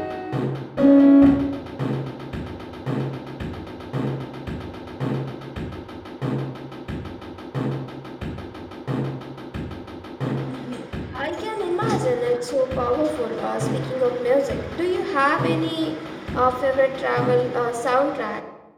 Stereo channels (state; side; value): identical; both; correlation 1.00